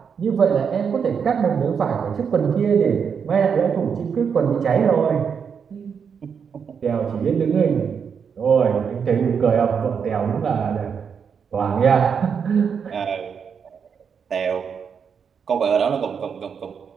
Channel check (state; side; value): quieter; left; 6.7 dB